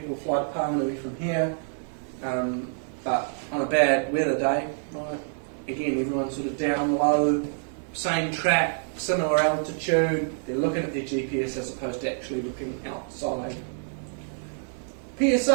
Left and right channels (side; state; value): left; silent; digital silence